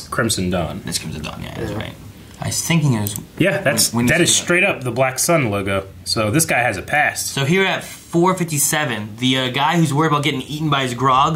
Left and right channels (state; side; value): identical; both; correlation 1.00